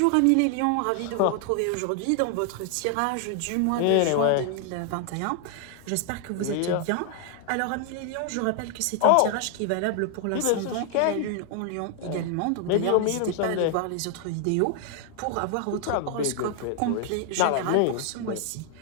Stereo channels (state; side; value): different; both; correlation 0.00